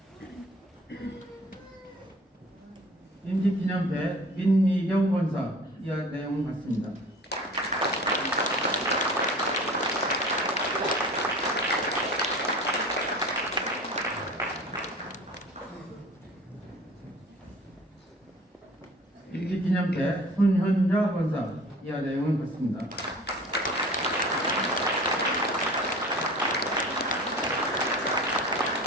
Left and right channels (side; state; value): both; normal; correlation 0.43